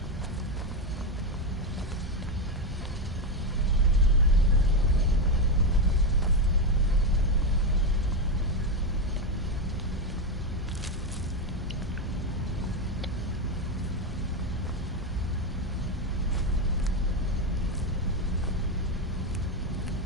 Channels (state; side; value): normal; both; correlation 0.10